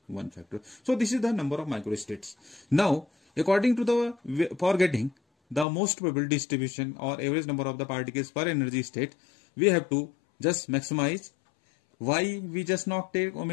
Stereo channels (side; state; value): right; drops out; at 5.7 s